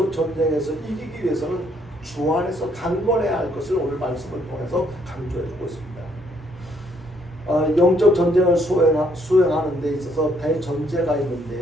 전쟁에서 이기기 위해서는 주 안에서 강건해야 할 것을 오늘 말씀을 통해서 강조해주고 있습니다. 영적 전쟁을 수행하는 데 있어서 대전제가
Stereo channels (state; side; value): normal; both; correlation 0.69